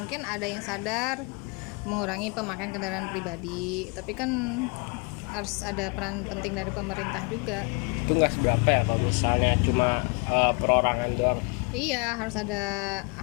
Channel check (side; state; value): right; quieter; 31.1 dB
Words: ada yang sadar mengurangi pemakaian kendaraan pribadi, tapi kan harus ada peran penting dari pemerintah juga. Itu nggak seberapa ya kalau misalnya cuma perorangan doang. Iya, harus ada